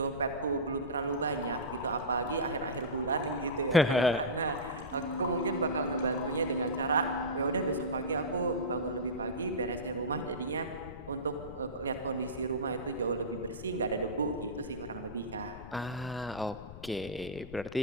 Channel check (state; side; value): noise; left; rumble, 13 dB below the sound